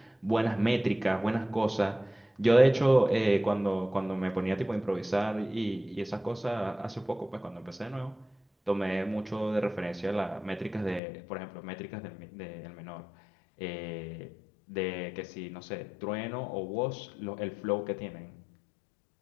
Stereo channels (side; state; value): right; drops out; at 11.0 s